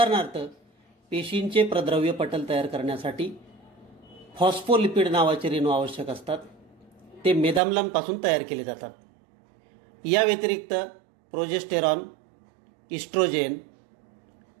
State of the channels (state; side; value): drops out; left; at 7.6 s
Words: पेशींचे प्रद्रव्य पटल तयार करण्यासाठी फॉस्फोलिपिड नावाचे रेणू आवश्यक असतात. ते मेदाम्लांपासून तयार केले जातात. या व्यतिरिक्त प्रोजेस्टेरॉन, इस्ट्रोजेन,